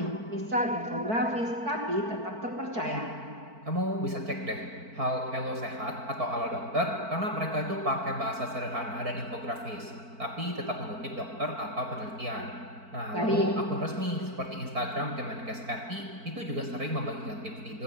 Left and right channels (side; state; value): left; late; 4.5 ms